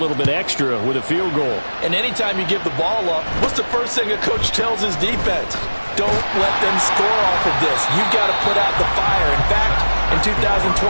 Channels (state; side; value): inverted; both; correlation -1.00